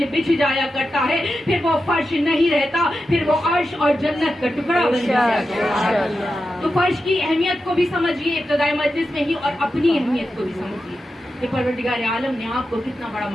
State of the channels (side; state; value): both; normal; correlation 0.90